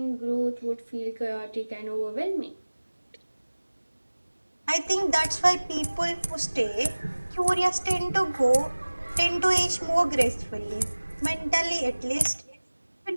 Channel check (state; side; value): inverted; both; correlation -1.00